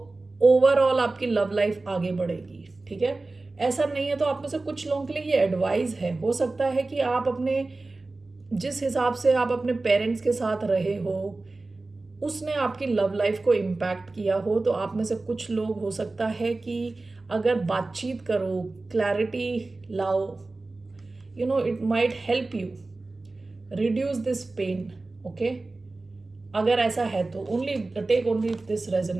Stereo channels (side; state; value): left; quieter; 3.3 dB